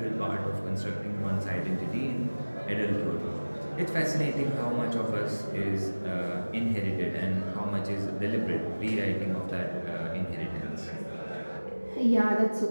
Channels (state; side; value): inverted; both; correlation -1.00